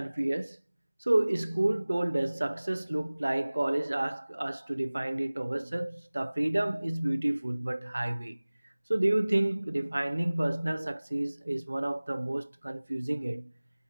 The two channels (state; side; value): inverted; both; correlation -1.00